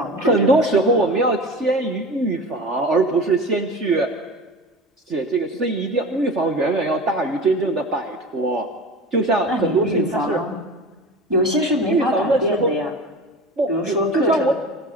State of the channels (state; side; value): normal; both; correlation 0.33